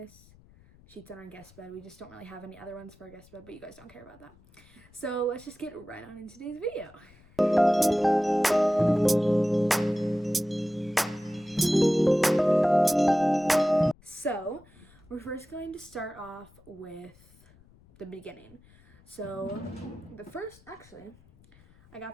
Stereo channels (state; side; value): noise; left; rumble, 27 dB below the sound